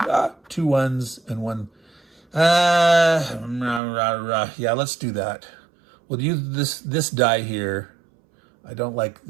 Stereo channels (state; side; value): drops out; left; at 3.8 s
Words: 2 1s, and 1. Yeah, let's do that. We'll use this die here. I don't like